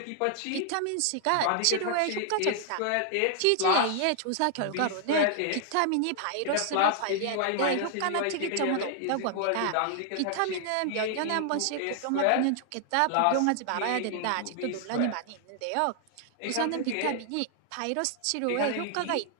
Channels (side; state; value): both; different; correlation 0.00